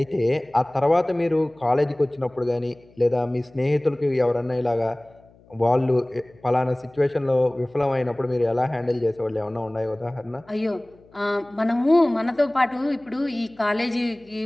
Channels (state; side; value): noise; left; hum, 28 dB below the sound